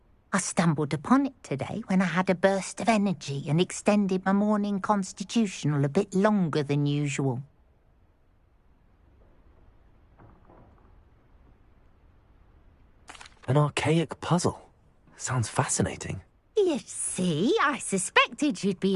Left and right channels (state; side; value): identical; both; correlation 1.00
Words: I stumbled upon it today when I had a burst of energy and extended my morning constitutional a bit longer than usual. An archaic puzzle. Sounds fascinating. You see, I suspected you'd be